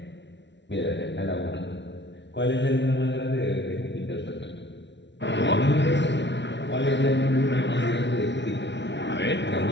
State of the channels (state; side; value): late; right; 0.52 ms